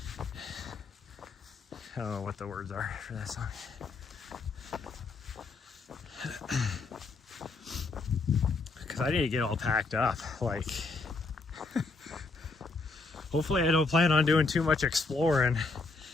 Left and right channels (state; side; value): quieter; right; 3.7 dB